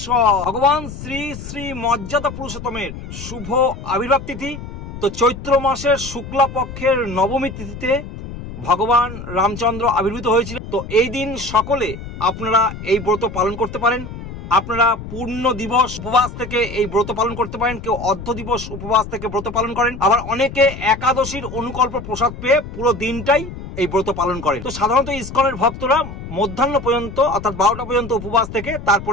ভগবান শ্রী শ্রী মর্যাদা পুরুষোত্তমের শুভ আবির্ভাব তিথি। তো চৈত্র মাসের শুক্লা পক্ষের নবমী তিথিতে ভগবান রামচন্দ্র আবির্ভূত হয়েছিল। তো এই দিন সকলে আপনারা এই ব্রত পালন করতে পারেন। আপনারা পূর্ণ দিবস উপবাস থেকে এই ব্রত পালন করতে পারেন, কেউ অর্ধ দিবস উপবাস থেকে ব্রত পালন করেন, আবার অনেকে একাদশীর অনুকল্প প্রসাদ পেয়ে পুরো দিনটাই এই ব্রত পালন করেন। তো সাধারণত ইসকনের ভক্তরা মধ্যাহ্ন পর্যন্ত অর্থাৎ 12টা পর্যন্ত উপবাস থেকে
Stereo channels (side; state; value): left; noise; rumble, 11 dB below the sound